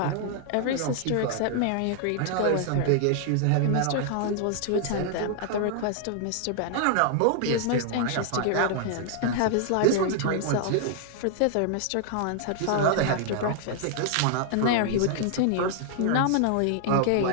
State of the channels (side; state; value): both; different; correlation 0.00